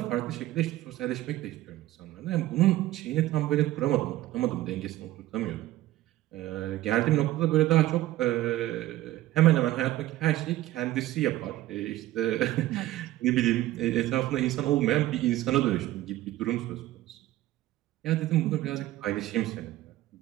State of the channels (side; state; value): left; quieter; 15.5 dB